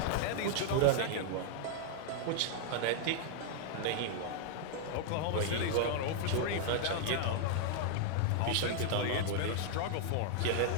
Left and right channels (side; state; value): both; different; correlation -0.01